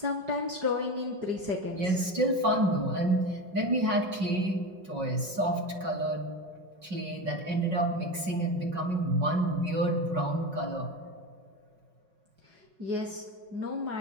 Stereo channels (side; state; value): left; late; 5.4 ms